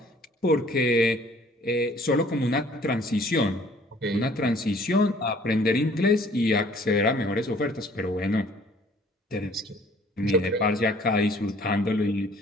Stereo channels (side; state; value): both; normal; correlation 0.56